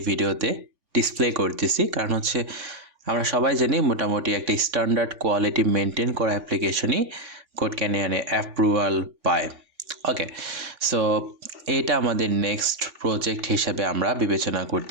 ভিডিওতে ডিসপ্লে করতেছি, কারণ হচ্ছে আমরা সবাই জানি মোটামুটি একটা স্ট্যান্ডার্ড কোয়ালিটি মেনটেন করা অ্যাপ্লিকেশনই কোড ক্যানিয়নে অ্যাপ্রুভাল পায়। ওকে, সো এটা আমাদের নেক্সট প্রজেক্ট হিসাবে আমরা বিবেচনা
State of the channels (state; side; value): late; left; 3.5 ms